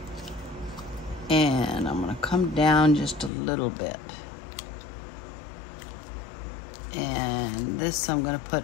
And I'm gonna come down just a little bit. And this I'm gonna put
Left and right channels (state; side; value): drops out; right; at 3.3 s